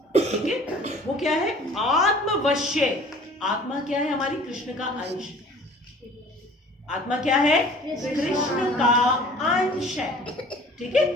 ठीक है। वो क्या है? आत्मवश्य। आत्मा क्या है? हमारी कृष्ण का अंश। आत्मा क्या है? कृष्ण का अंश है, ठीक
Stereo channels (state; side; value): normal; both; correlation 0.49